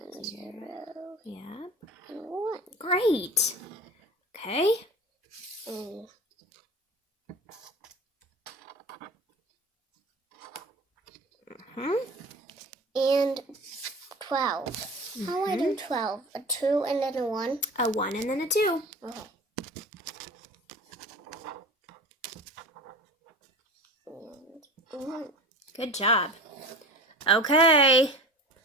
0. Yeah. And 1. Great. Okay. And 12. How do I do 12? A 2 and then a 1? A 1 and then a 2. Okay. And 1. Good job. Okay.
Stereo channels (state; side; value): normal; both; correlation 0.36